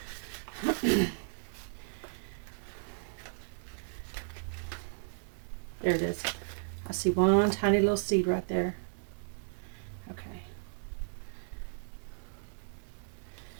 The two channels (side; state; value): left; silent; digital silence